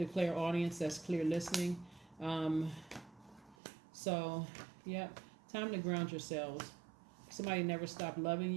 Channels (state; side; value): drops out; left; at 3.6 s